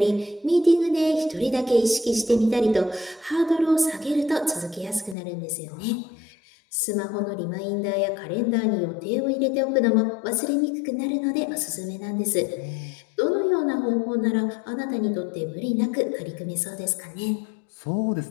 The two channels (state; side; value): drops out; right; at 5.2 s